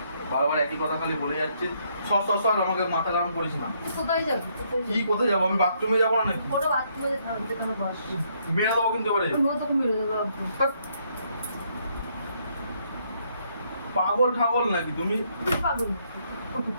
বারবার একই কথা খালি বলে যাচ্ছিস। সর আমাকে মাথা গরম করিস না। তুই কোথায় যাবি? কি কোথায় যাবো? আমি বাথরুমে যাবো না নাকি? কোনো বাথরুমে থাকতে কোনো বস। মেরে দেবো কিন্তু এবারে। আমিও তোকে মেরে দেবো একদম। পাগল ঠাগল নাকি তুমি? তুই পাগল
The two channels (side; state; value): both; inverted; correlation -0.71